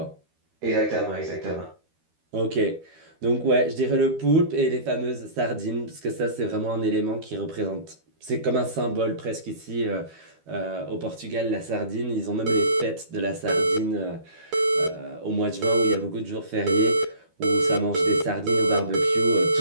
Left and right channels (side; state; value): left; late; 12 ms